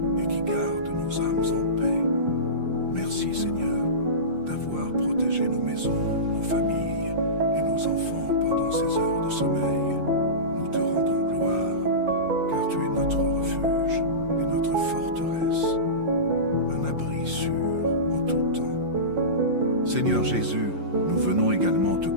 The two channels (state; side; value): late; left; 5.7 ms